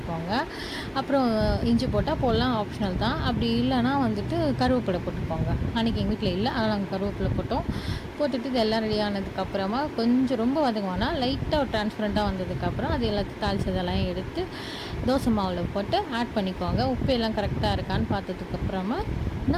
அப்புறம் இஞ்சி போட்டால் போடலாம், ஆப்ஷனல் தான். அப்படி இல்லைன்னா வந்துட்டு கருவேப்பிலை போட்டுக்கோங்க. அன்றைக்கி எங்கள் வீட்டில் இல்லை, ஆனால் நாங்கள் கருவேப்பிலை போட்டுட்டு இது எல்லாம் ரெடி ஆனதுக்கப்புறமா கொஞ்சம் ரொம்ப வதங்குவோன்னா லைட்டாக ஒரு டிரான்ஸ்பரண்ட்டாக வந்ததுக்கப்புறம் அது எல்லாத்தையும் தாளிச்சதெல்லாம் எடுத்து தோசை மாவில் போட்டு ஆட் பண்ணிக்கோங்க. உப்பு எல்லாம் கரெக்டாக இருக்கான்னு பார்த்ததுக்கப்புறமா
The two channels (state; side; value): identical; both; correlation 1.00